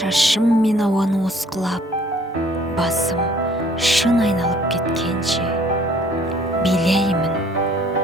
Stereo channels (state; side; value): normal; both; correlation 0.58